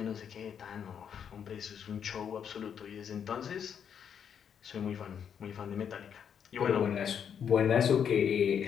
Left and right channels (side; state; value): right; quieter; 8.0 dB